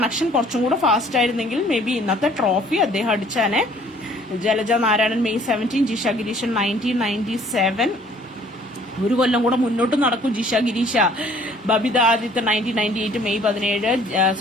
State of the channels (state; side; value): normal; both; correlation 0.57